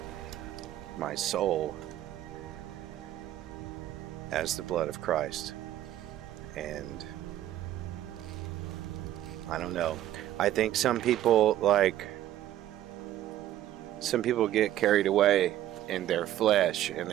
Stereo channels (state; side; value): quieter; left; 12.9 dB